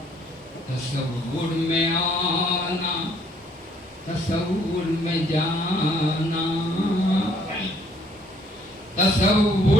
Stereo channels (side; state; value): both; normal; correlation 0.63